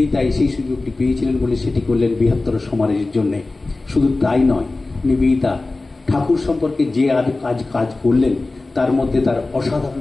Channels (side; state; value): right; quieter; 3.2 dB